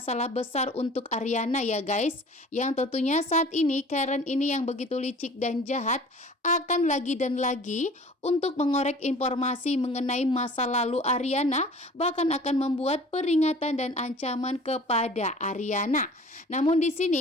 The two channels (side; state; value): both; normal; correlation 0.46